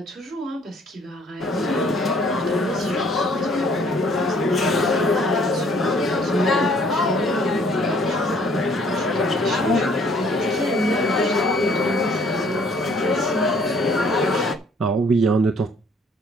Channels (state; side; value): normal; both; correlation 0.60